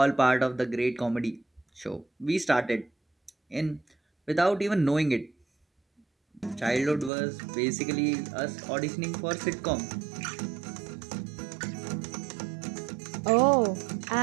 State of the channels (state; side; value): drops out; left; at 7.1 s